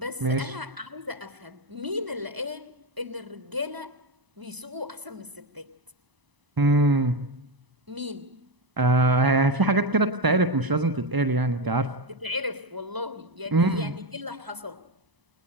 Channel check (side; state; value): left; late; 1.0 ms